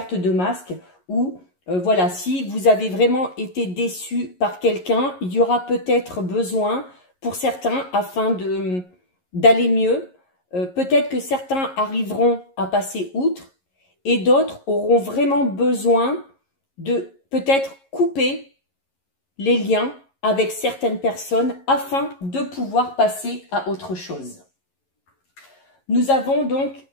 de masque où, voilà, si vous avez vraiment été déçu par quelqu'un, il y aura peut-être besoin pour certains, afin d'aller mieux, peut-être que certains arriveront à passer outre et d'autres auront vraiment besoin de peut-être couper les liens avec certaines personnes afin de pouvoir passer à autre chose. Nous avons donc,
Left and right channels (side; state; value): right; late; 11 ms